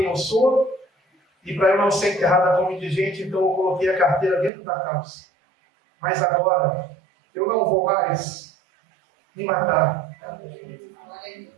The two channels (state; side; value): drops out; left; at 4.5 s